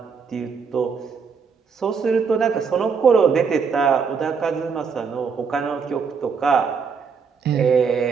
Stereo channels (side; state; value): left; quieter; 5.8 dB